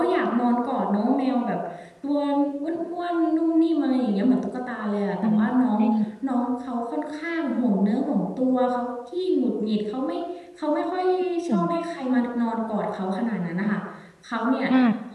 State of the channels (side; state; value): both; identical; correlation 1.00